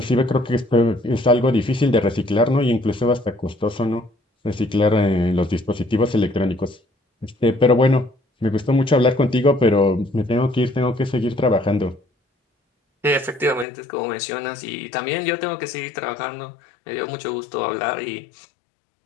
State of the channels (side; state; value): right; drops out; at 13.7 s